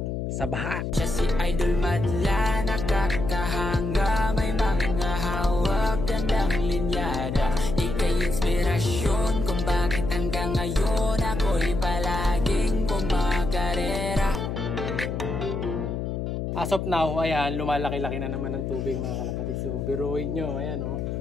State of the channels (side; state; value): left; noise; hum, 3 dB below the sound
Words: sa baha. Siya si Idol Madla, nakakahanga, may mga hawak, gandang linyada. Ika'y inspirasyon kung bakit hanggang ngayon ako'y palaging kumakarera. As of now, ayan, lumalaki-laki na naman ang tubig mga kalapatids. So, biruin nyo, ayan o.